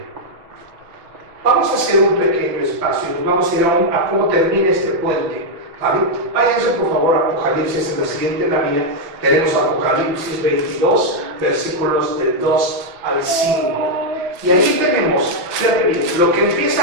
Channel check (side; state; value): left; late; 5.9 ms